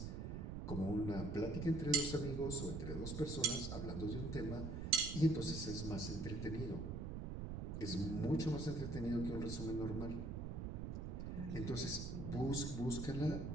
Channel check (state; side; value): noise; right; rumble, 4 dB below the sound